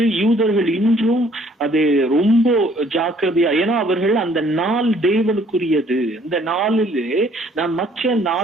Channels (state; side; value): normal; both; correlation 0.61